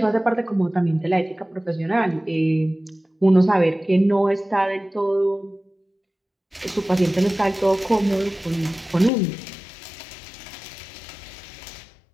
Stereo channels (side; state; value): right; drops out; at 9.1 s